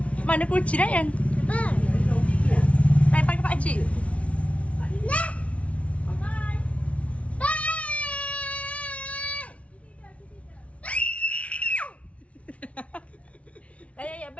Mana kunci Ryan? Main pakai pakcik. Ya,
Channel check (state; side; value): late; right; 0.064 ms